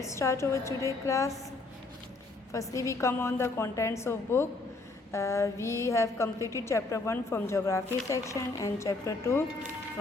start our today class. Firstly, we come on the contents of book. We have completed chapter 1 from geography section and chapter 2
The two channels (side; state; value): right; quieter; 3.3 dB